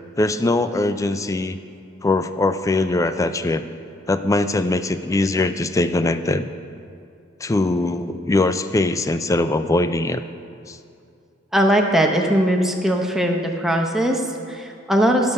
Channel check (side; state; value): both; normal; correlation 0.70